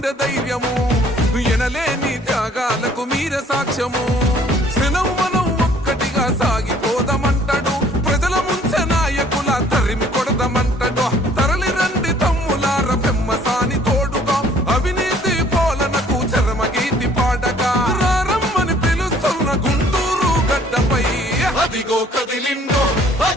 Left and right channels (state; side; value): normal; both; correlation 0.58